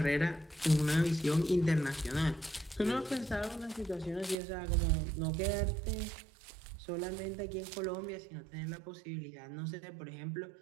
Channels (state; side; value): drops out; left; at 4.4 s